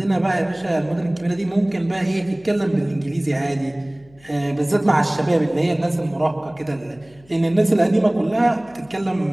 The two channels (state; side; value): noise; left; hum, 28 dB below the sound